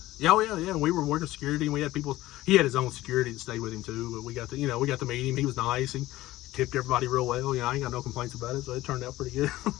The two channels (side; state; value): right; quieter; 16.6 dB